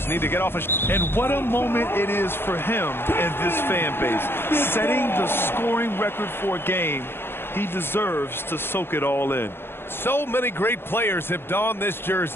need to get off a... And what a moment it is for him and this fan base. Setting the scoring record for a game, he deserves to soak it all in. So many great players have donned this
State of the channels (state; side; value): late; right; 0.11 ms